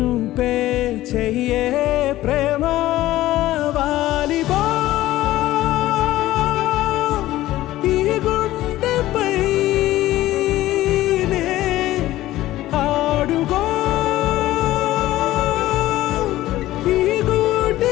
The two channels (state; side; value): quieter; right; 15.6 dB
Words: పే చెయ్యే ప్రేమ వాలిబో ఈ గుండెపై ఆడుగో